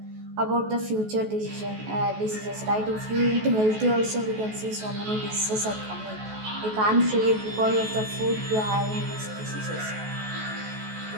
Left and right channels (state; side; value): late; left; 14 ms